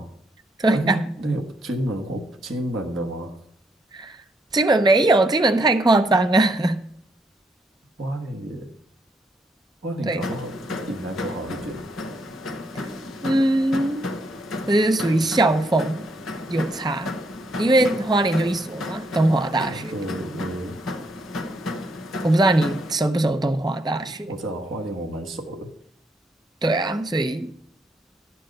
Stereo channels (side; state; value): both; normal; correlation 0.74